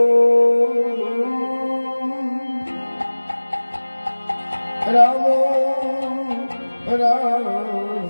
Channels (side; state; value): both; inverted; correlation -1.00